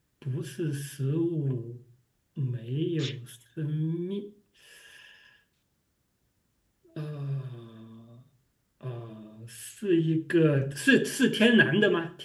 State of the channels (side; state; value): both; identical; correlation 1.00